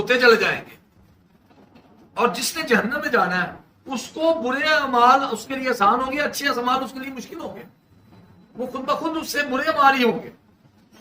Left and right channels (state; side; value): identical; both; correlation 1.00